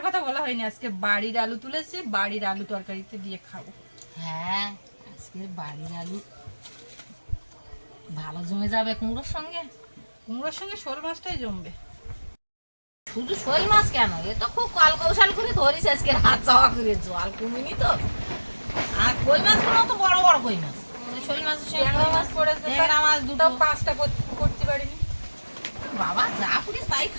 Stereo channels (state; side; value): inverted; both; correlation -1.00